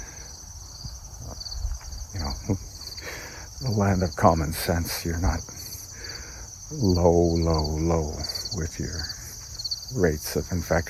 you know, the land of common sense. You're not low with your rates of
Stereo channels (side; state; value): both; identical; correlation 1.00